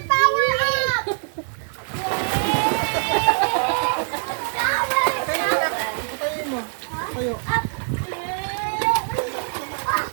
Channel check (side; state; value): left; silent; digital silence